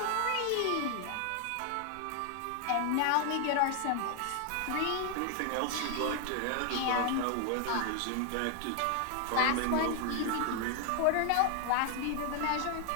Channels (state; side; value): different; both; correlation 0.00